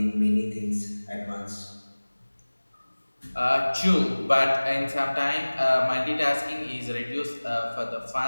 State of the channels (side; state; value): both; inverted; correlation -1.00